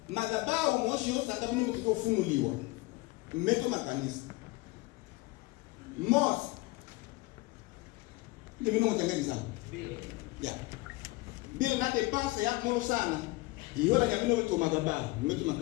madhabahu moshi yosa kabini mtiko funuliwa. Mmeto makanisa. Mos. Ni mimi mtengeni sawa. Ya. Bila nate pasa ya mulu sana. Ihola nyamino wetu madhabahu, mmeto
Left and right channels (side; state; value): right; quieter; 22.5 dB